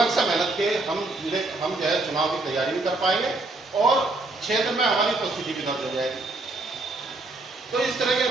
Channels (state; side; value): quieter; left; 3.0 dB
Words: से मेहनत के हम जो है चुनाव की तैयारी भी कर पाएंगे और क्षेत्र में हमारी उपस्थिति भी दर्ज हो जाएगी। तो इस तरह के